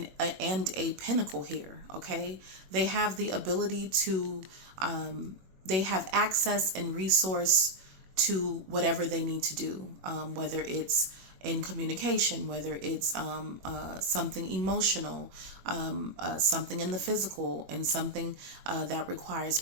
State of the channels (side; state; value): left; late; 21 ms